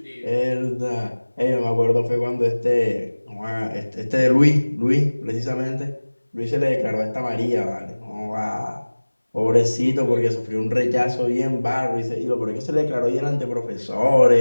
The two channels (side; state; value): both; inverted; correlation -1.00